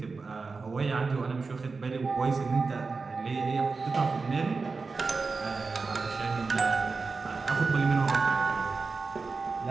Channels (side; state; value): left; quieter; 4.3 dB